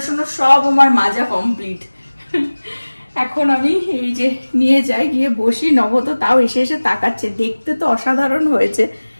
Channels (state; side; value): inverted; both; correlation -1.00